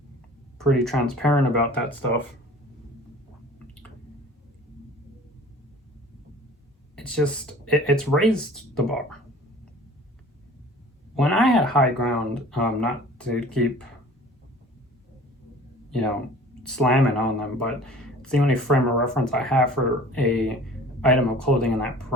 Pretty transparent about that stuff. It's just, it's raised the bar. When I had High Ground, not to keep, you know, slamming on them, but it's the only frame of reference I have for a item of clothing in that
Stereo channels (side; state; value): both; normal; correlation 0.46